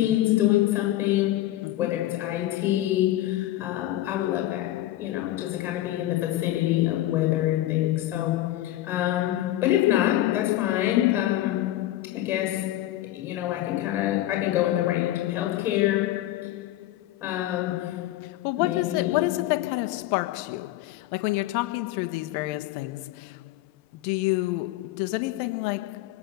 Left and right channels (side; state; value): right; quieter; 14.7 dB